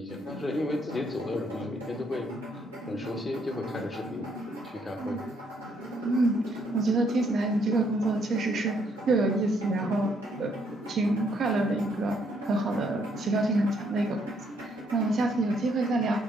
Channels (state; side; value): normal; both; correlation 0.70